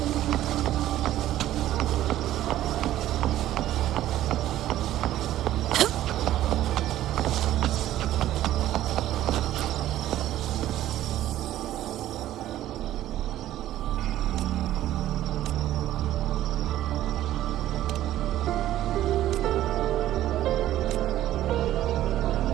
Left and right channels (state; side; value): quieter; left; 13.4 dB